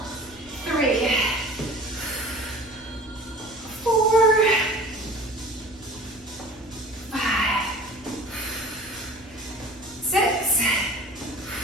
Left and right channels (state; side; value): normal; both; correlation 0.43